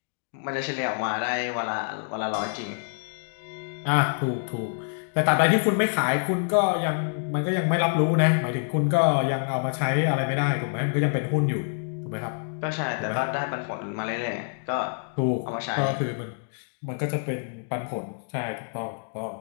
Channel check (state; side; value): silent; right; digital silence